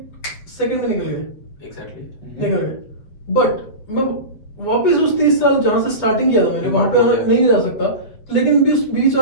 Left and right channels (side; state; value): right; late; 7.9 ms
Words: सेकंड में निकल गए. exactly. निकल गए. बट मैं वापस उस 30 साल जहाँ से स्टार्टिंग किया था मैंने वहां पे आना नहीं जा सकता. लेकिन भी उस बीच